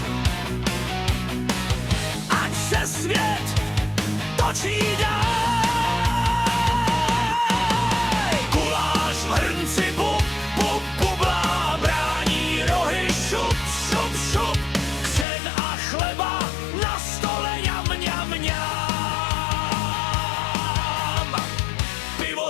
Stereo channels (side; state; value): right; drops out; at 15.2 s